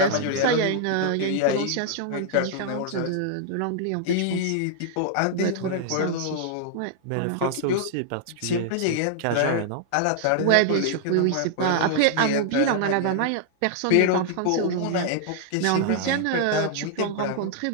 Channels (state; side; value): different; both; correlation -0.01